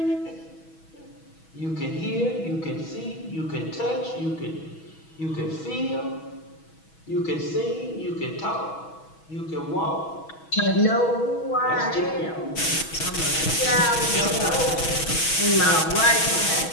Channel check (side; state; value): right; late; 6.2 ms